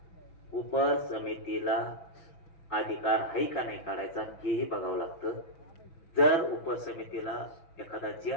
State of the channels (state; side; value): late; right; 6.0 ms